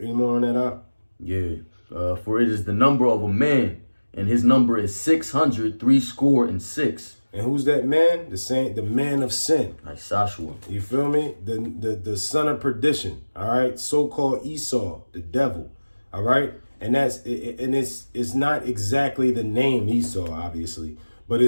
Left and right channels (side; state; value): both; inverted; correlation -1.00